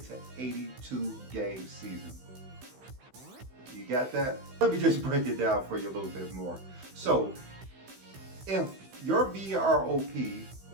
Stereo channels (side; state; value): left; late; 15 ms